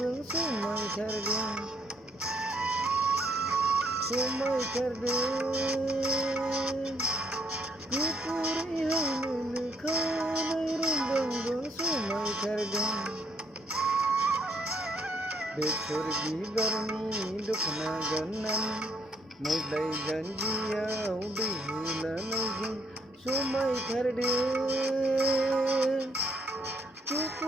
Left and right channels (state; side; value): normal; both; correlation 0.69